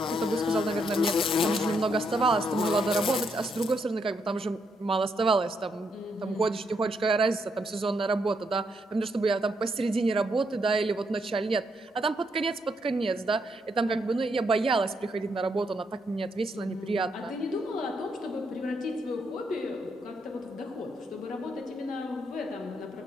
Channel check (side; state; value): both; normal; correlation 0.77